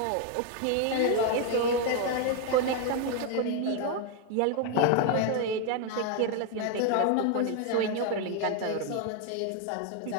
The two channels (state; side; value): different; both; correlation 0.01